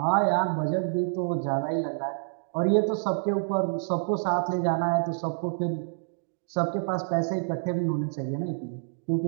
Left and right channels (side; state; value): left; silent; digital silence